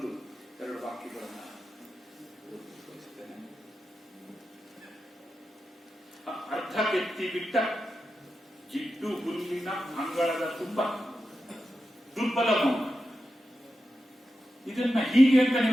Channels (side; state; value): both; normal; correlation 0.90